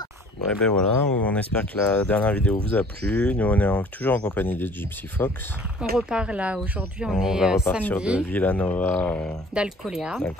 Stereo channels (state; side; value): normal; both; correlation 0.51